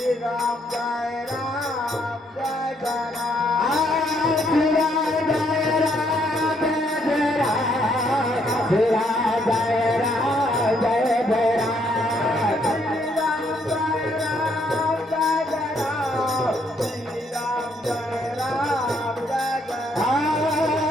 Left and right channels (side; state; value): both; normal; correlation 0.71